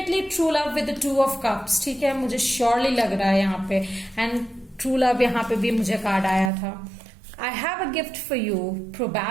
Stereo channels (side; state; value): left; drops out; at 6.5 s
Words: true love with the 2 of Cups। ठीक है, मुझे श्योरली लग रहा है यहाँ पे, एंड ट्रू लव यहाँ पे भी मुझे कार्ड आया था। I have a gift for you,